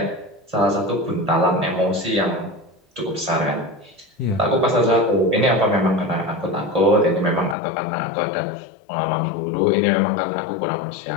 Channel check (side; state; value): right; drops out; at 7.6 s